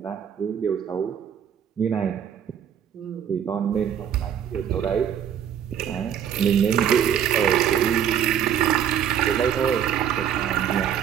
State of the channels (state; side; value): quieter; left; 9.1 dB